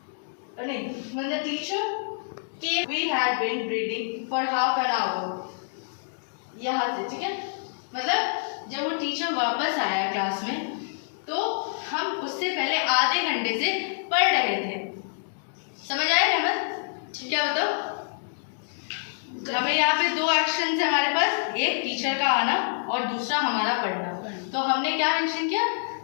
नहीं, when the teacher came we had been reading for half an hour, यहाँ से, ठीक है, मतलब जब वो टीचर वापस आया क्लास में तो हम उससे पहले आधे घंटे से पढ़ रहे थे। समझ आया रहमत, क्या बताओ, हमें यहाँ पे दो एक्शन है हमारे पास, एक टीचर का आना और दूसरा हमारा पढ़ना। तो हमने क्या मेंशन किया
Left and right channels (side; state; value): right; silent; digital silence